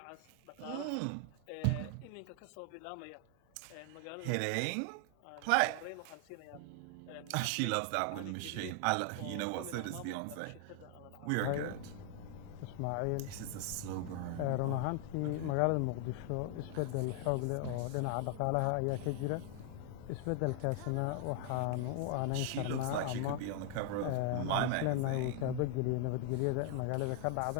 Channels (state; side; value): different; both; correlation 0.00